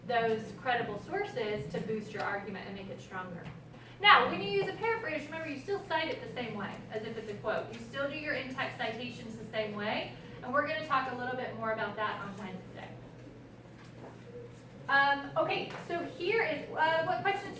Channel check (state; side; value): identical; both; correlation 1.00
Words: those credible sources to boost your argument and make it stronger. Now, when you use a paraphrase, remember you still cite it the same way as if it's a quote. You still do your in-text citations the same way, and we're going to talk a little bit more about that on Wednesday. Okay, so here is, what questions